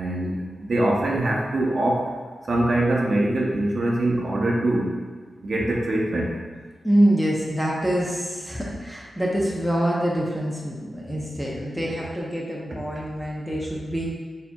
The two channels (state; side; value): normal; both; correlation 0.93